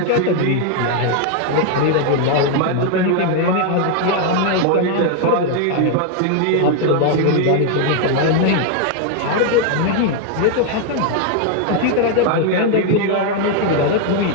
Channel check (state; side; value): different; both; correlation 0.00